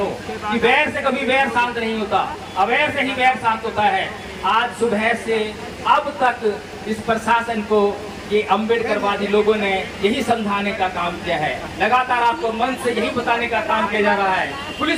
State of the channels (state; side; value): identical; both; correlation 1.00